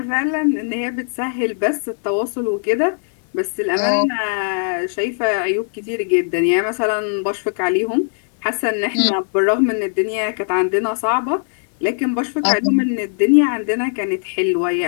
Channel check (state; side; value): silent; right; 65 dB below the other